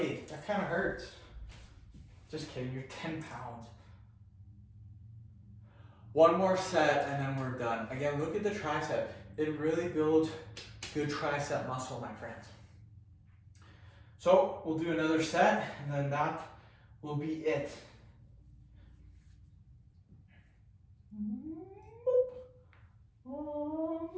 That kind of hurts. Just kidding. You're 10 pounds. 1 more set and then we're done. Again, look at the tricep. It really builds good tricep muscle, my friends. So we'll do another set and then that will be it.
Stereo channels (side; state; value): both; identical; correlation 1.00